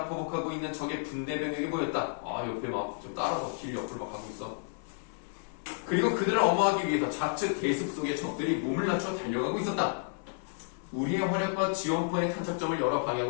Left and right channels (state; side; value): silent; right; 57 dB below the other